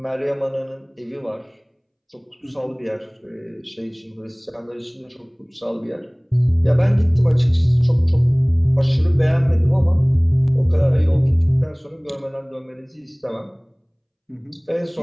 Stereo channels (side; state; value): both; identical; correlation 1.00